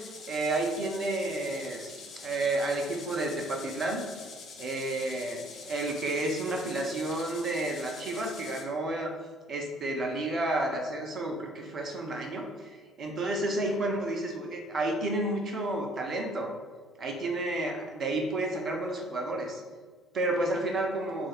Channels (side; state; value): both; normal; correlation 0.59